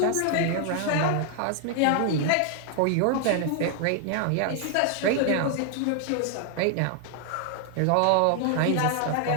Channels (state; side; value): different; both; correlation 0.00